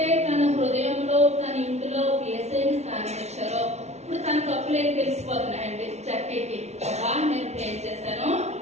తన హృదయంలో తన ఇంటిలో ఏసైని స్థానం ఇచ్చారో ఇప్పుడు తన తప్పులేని తెలిసిపోతున్నాయండి జక్కయ్యకి. నేను పే చేశాను,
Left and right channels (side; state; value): left; late; 0.32 ms